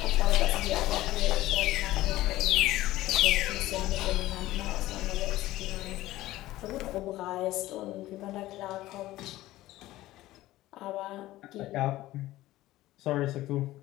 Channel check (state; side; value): quieter; right; 16.3 dB